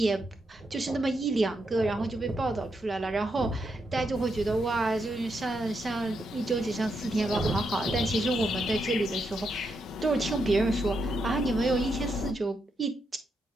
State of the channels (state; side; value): normal; both; correlation 0.82